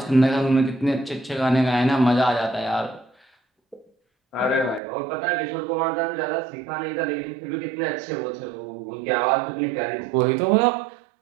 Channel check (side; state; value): left; drops out; at 4.8 s